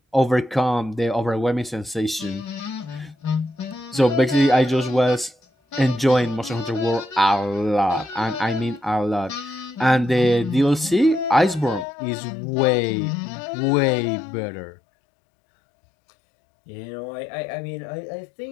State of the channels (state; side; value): drops out; right; at 11.9 s